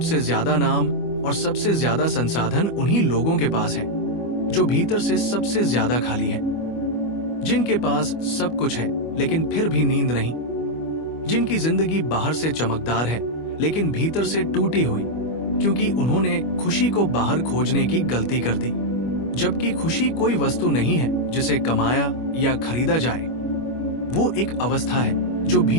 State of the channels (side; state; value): right; late; 25 ms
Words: ज्यादा नाम और सबसे ज्यादा संसाधन उन्हीं लोगों के पास है जो भीतर से सबसे ज्यादा खाली है, जिनके पास सब कुछ है लेकिन फिर भी नींद नहीं, जिनकी जिंदगी बाहर से चमकदार है लेकिन भीतर से टूटी हुई, क्योंकि उन्होंने खुशी को बाहर खोजने की गलती कर दी। जबकि खुशी कोई वस्तु नहीं है जिसे कमाया या खरीदा जाए, वो एक अवस्था है जो